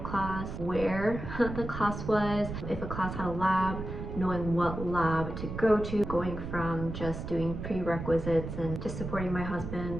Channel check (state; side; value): noise; right; rumble, 7 dB below the sound